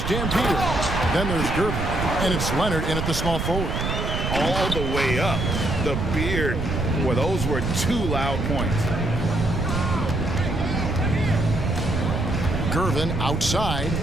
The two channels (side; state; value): right; noise; rumble, 2 dB below the sound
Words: Dan Peters. Then there's Gervin. And it's Leonard in at the small forward. All the way up. The beard. Well, those were two loud points. Gervin outside.